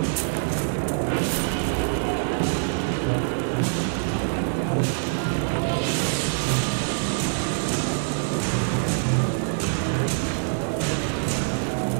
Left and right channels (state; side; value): silent; left; 62 dB below the other